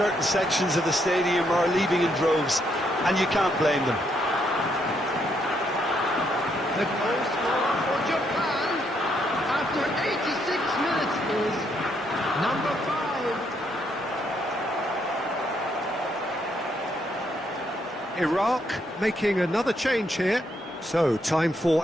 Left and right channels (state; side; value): normal; both; correlation 0.75